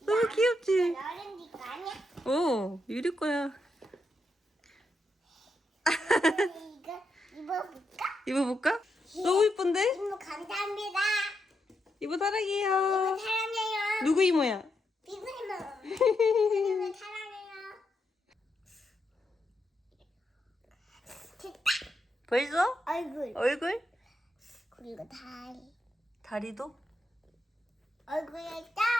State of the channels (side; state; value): both; normal; correlation 0.82